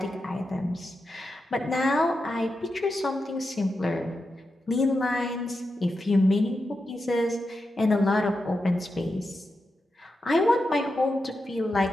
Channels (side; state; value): both; normal; correlation 0.88